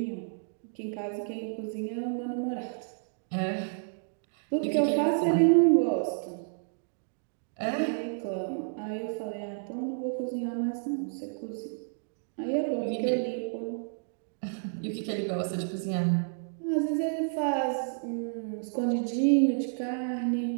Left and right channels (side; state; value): left; silent; digital silence